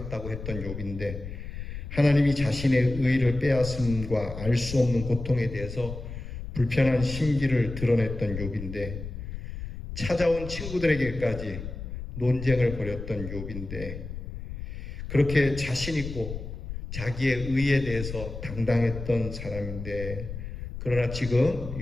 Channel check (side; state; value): left; noise; rumble, 8 dB below the sound